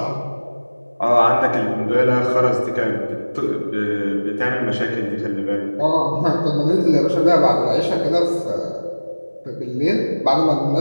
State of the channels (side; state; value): both; inverted; correlation -1.00